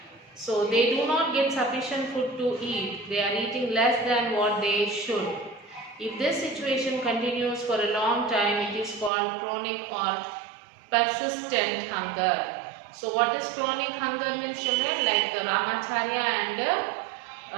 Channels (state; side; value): drops out; left; at 9.1 s